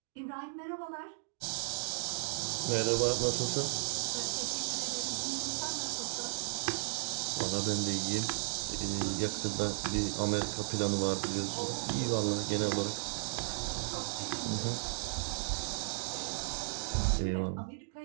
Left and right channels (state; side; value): silent; left; digital silence